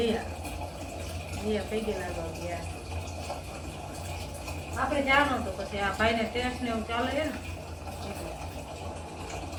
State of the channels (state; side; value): identical; both; correlation 1.00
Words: જીયા પૈ ગયેલા ગયા. આપણે જવાનું તો પછી આ ભાઈને ટેસ્ટ ને એવું ચાલે છે ને